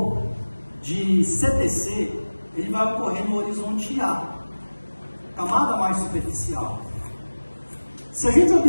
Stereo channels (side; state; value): both; inverted; correlation -1.00